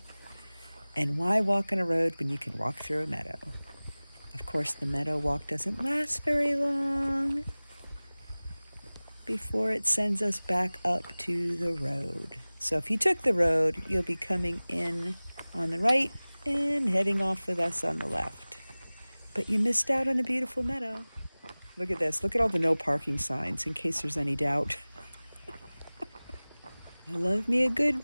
And why walk on a road when you can walk through a meadow? Of course, the meadow walk doesn't last very long before it sends us back up to the road. So if you took the road, you'll be coming in on the right and heading off with us on the left. But you missed out on a beautiful meadow. Look at this. Look at all the no parking signs in case there's any doubt. I love me a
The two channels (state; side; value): inverted; both; correlation -0.99